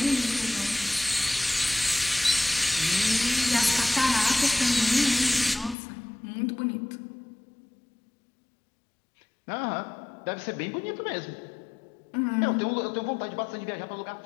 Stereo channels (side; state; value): right; drops out; at 5.8 s